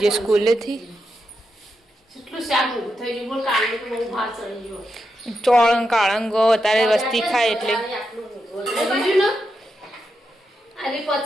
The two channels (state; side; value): normal; both; correlation 0.86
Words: જે સ્કૂલેથી ચોળંગ કાળંગો અત્યારે વસ્તી ખાય એટલે